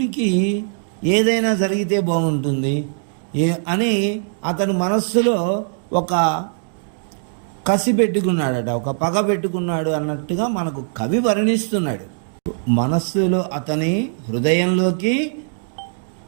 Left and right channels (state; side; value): silent; left; digital silence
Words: ఏదైనా జరిగితే బాగుంటుంది అని అతను మనస్సులో ఒక కసి పెట్టుకున్నాడట, ఒక పగ పెట్టుకున్నాడు అన్నట్టుగా మనకు కవి వర్ణిస్తున్నాడు. మనస్సులో అతని హృదయంలోకి